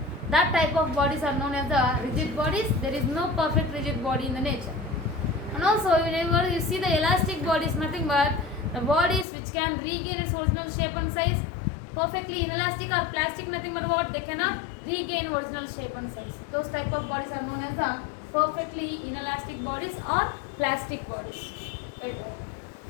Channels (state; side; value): drops out; right; at 9.2 s